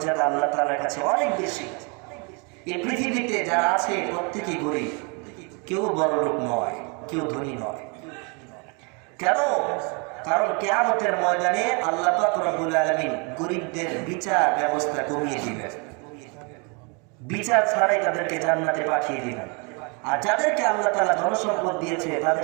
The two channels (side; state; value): left; quieter; 33.2 dB